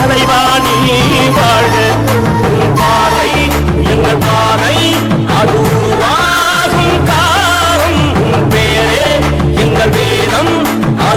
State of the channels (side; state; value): both; identical; correlation 1.00